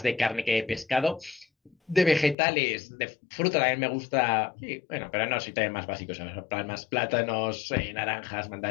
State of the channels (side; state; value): right; drops out; at 2.4 s